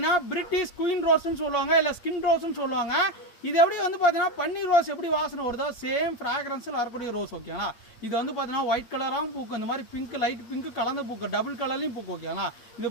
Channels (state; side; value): late; right; 8.6 ms